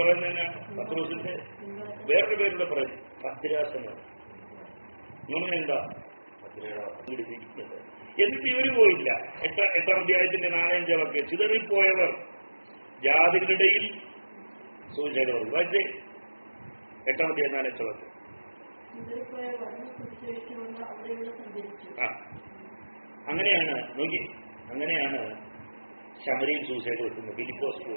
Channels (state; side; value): inverted; both; correlation -1.00